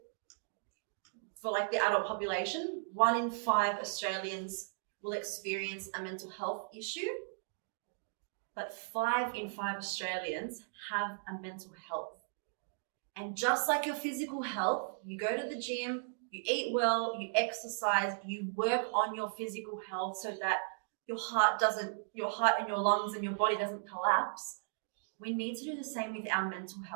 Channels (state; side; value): silent; left; digital silence